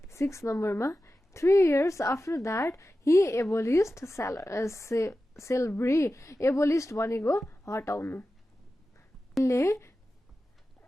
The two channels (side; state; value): both; normal; correlation 0.93